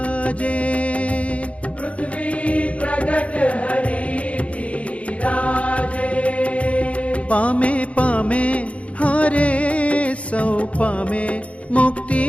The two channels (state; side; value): late; right; 0.064 ms